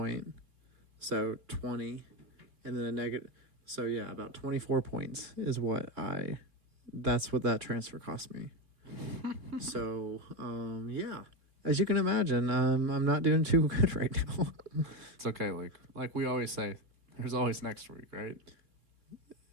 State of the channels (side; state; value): left; late; 3.2 ms